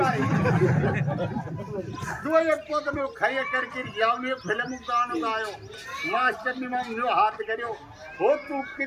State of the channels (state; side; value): identical; both; correlation 1.00